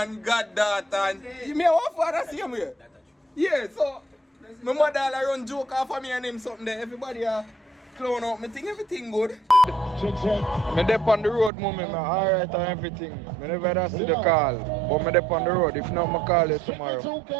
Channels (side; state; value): left; drops out; at 11.5 s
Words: God daughter and me have one father same way. Yeah, so my mother all run joke off of me and him something there. Everybody clown out. Me think everything good. Me dep on the road moment, man. Alright and everything. Me never see the call. But me dep on the road. If not, I call you tomorrow.